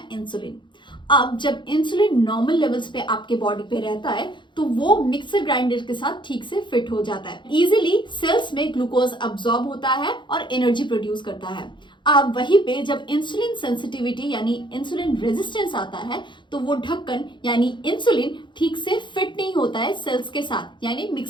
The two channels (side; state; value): right; late; 0.23 ms